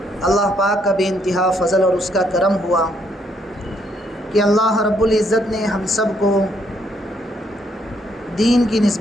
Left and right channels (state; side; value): normal; both; correlation 0.72